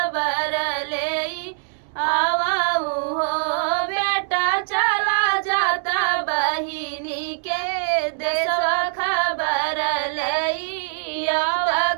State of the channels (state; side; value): silent; left; 64 dB below the other